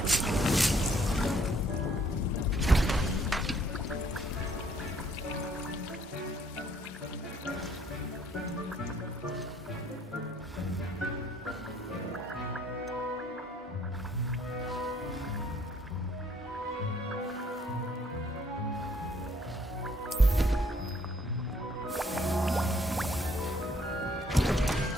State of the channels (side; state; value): both; normal; correlation 0.64